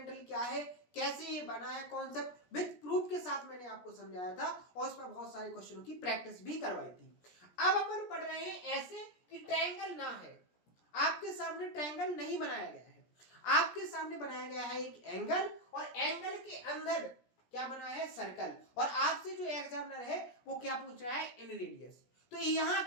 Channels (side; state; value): right; late; 17 ms